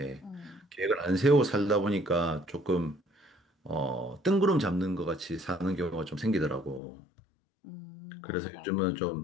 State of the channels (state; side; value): drops out; right; at 6.8 s